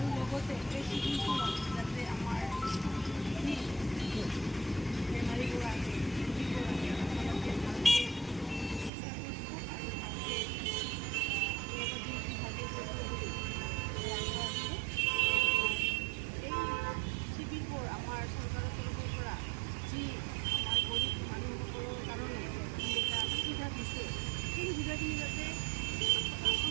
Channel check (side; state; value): left; drops out; at 8.9 s